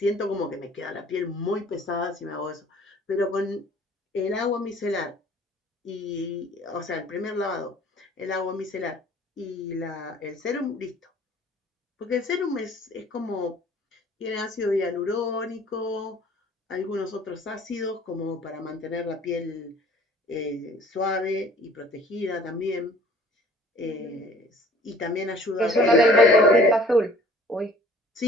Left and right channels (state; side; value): normal; both; correlation 0.52